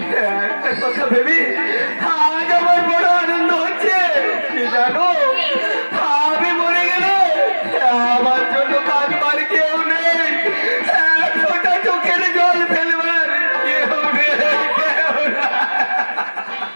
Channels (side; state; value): both; inverted; correlation -1.00